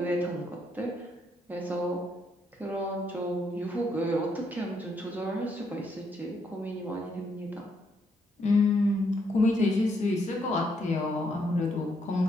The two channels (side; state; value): both; normal; correlation 0.75